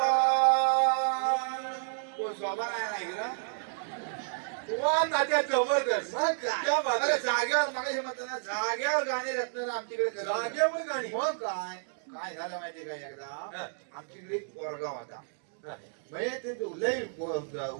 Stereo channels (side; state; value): left; silent; digital silence